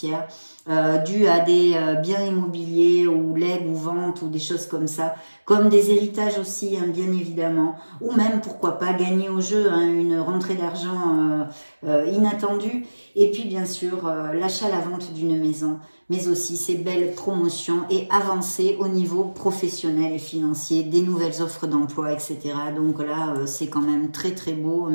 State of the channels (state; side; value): inverted; both; correlation -1.00